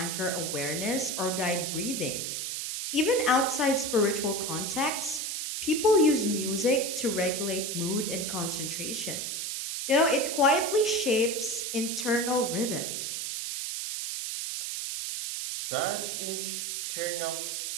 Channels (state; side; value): noise; right; hiss, 3 dB below the sound